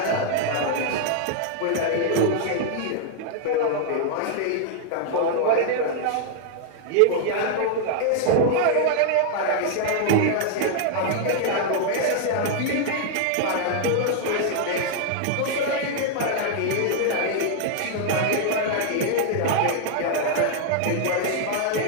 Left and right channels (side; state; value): both; different; correlation 0.00